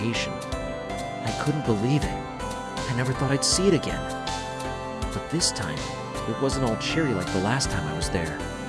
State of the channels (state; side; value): identical; both; correlation 1.00